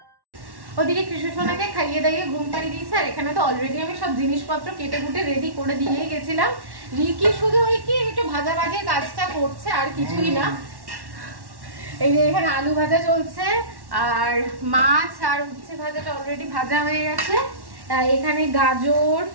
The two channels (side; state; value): left; late; 1.1 ms